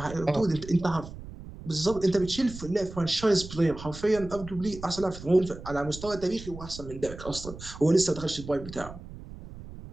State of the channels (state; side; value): noise; right; rumble, 13 dB below the sound